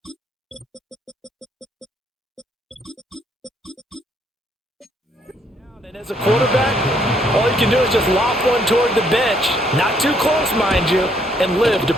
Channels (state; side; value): normal; both; correlation 0.69